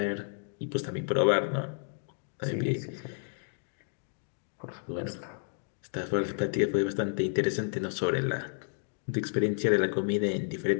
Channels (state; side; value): silent; right; digital silence